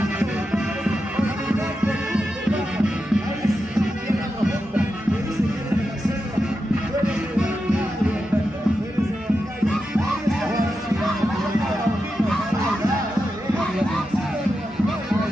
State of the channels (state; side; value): normal; both; correlation 0.89